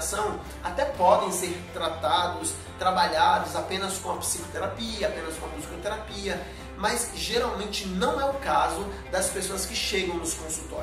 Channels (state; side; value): identical; both; correlation 1.00